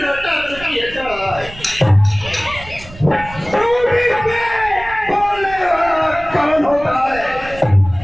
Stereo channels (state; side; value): noise; right; rumble, 16 dB below the sound